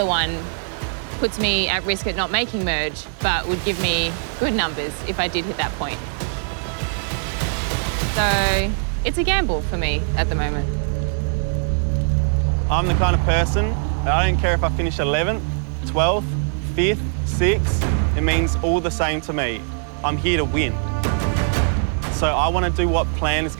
one puts me at risk at not making merge, but would give me good numbers if I did hit that point. So it's a gamble for me at the moment. I'm the kind of person that I don't care if I finish 11th, 12th, 5th, 6th, it means all the same to me. I'm here to win. So I want to do what plan is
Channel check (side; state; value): left; silent; 64 dB below the other